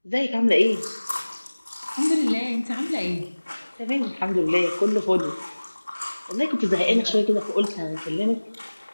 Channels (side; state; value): both; inverted; correlation -1.00